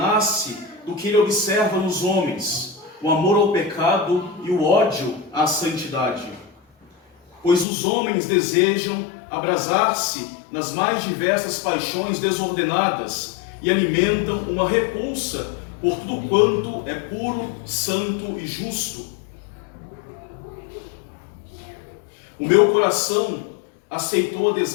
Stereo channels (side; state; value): right; drops out; at 7.7 s